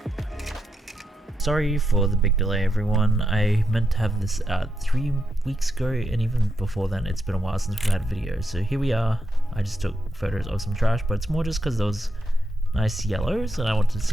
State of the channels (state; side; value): normal; both; correlation 0.84